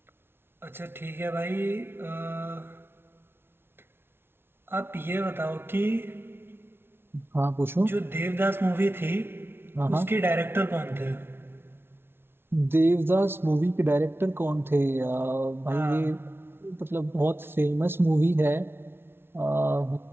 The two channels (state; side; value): late; left; 0.11 ms